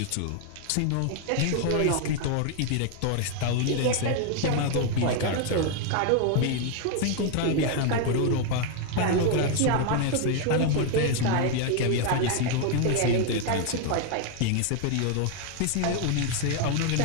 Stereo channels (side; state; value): both; different; correlation 0.00